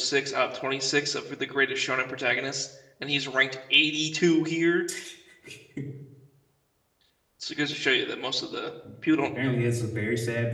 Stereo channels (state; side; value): identical; both; correlation 1.00